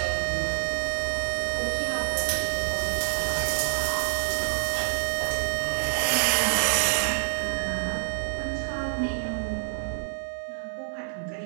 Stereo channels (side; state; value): left; silent; digital silence